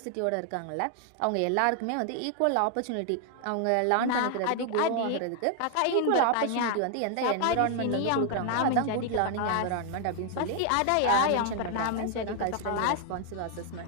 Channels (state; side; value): different; both; correlation 0.00